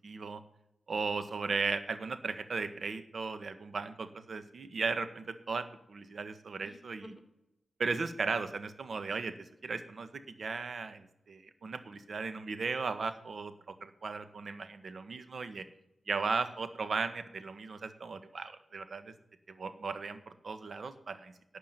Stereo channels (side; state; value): left; quieter; 4.1 dB